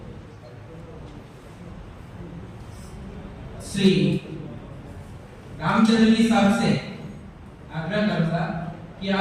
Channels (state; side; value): identical; both; correlation 1.00